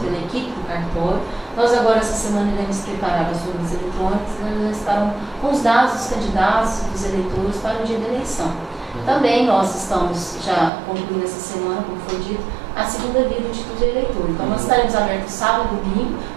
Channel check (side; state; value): left; drops out; at 10.7 s